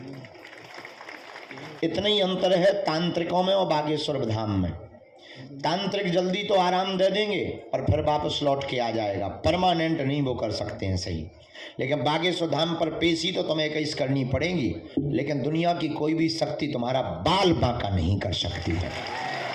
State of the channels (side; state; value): both; identical; correlation 1.00